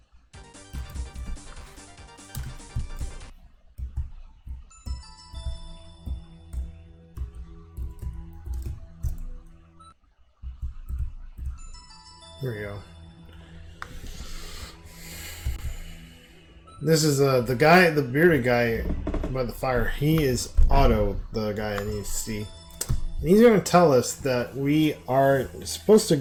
Here we go. This is the guy, the bearded guy by the fire. He is Otto, the guy I need to see. And he's going to tell us that we are supposed to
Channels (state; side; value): identical; both; correlation 1.00